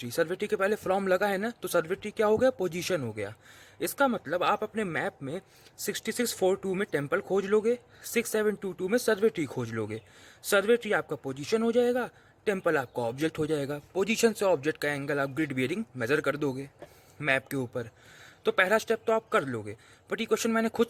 survey tree के पहले फ्रॉम लगा है ना, तो सर्वे ट्री क्या हो गया, पोजीशन हो गया। इसका मतलब आप अपने मैप में 6642 में टेम्पल खोज लोगे, 6722 में सर्वे ट्री खोज लोगे। सर्वे ट्री आपका पोजीशन हो जाएगा, टेम्पल आपका ऑब्जेक्ट हो जाएगा। पोजीशन से ऑब्जेक्ट का एंगल आप ग्रिड बियरिंग मेजर कर दोगे मैप के ऊपर। तो पहला स्टेप तो आप कर लोगे, बट ये क्वेश्चन मैंने खुद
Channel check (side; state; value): both; identical; correlation 1.00